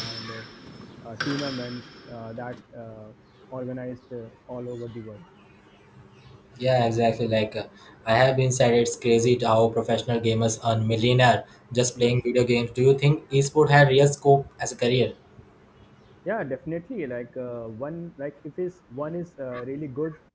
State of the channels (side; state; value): both; identical; correlation 1.00